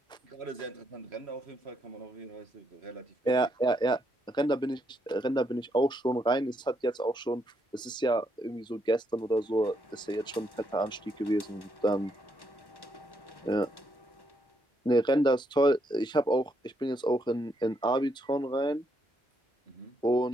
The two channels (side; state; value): both; normal; correlation 0.76